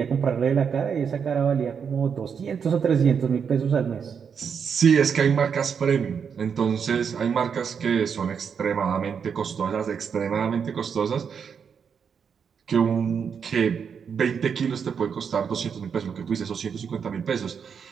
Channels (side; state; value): left; quieter; 6.8 dB